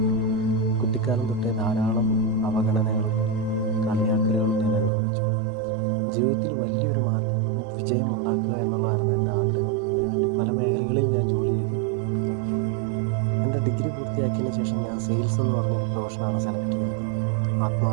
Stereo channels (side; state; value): left; drops out; at 4.9 s